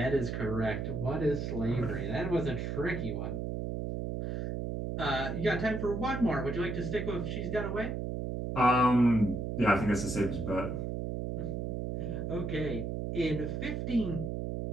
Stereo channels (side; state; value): right; noise; hum, 3 dB below the sound